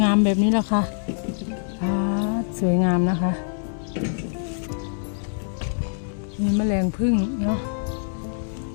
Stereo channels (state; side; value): silent; right; digital silence